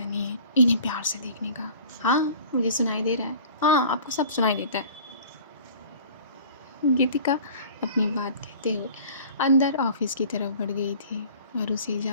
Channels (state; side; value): inverted; both; correlation -0.46